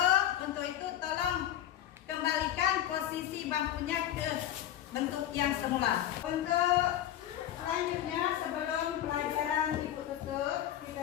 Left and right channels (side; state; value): right; quieter; 11.9 dB